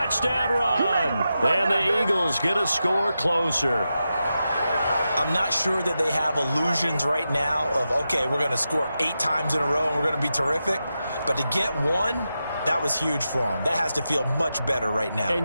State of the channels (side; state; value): both; inverted; correlation -0.89